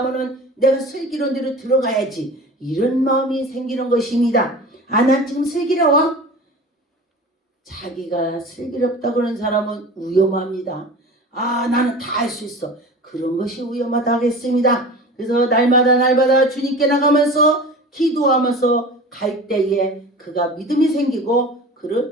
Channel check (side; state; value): both; normal; correlation 0.36